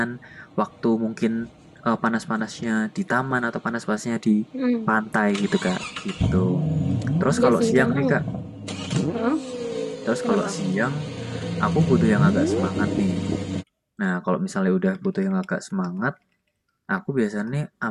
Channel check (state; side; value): identical; both; correlation 1.00